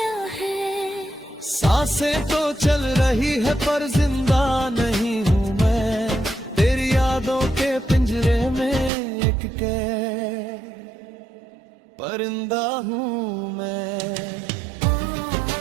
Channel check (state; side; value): drops out; left; at 8.9 s